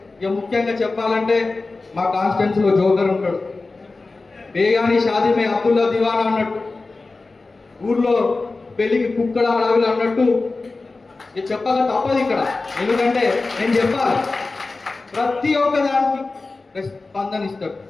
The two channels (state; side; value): quieter; right; 3.6 dB